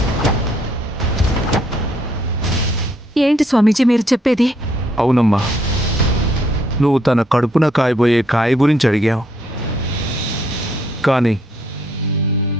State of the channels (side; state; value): both; normal; correlation 0.70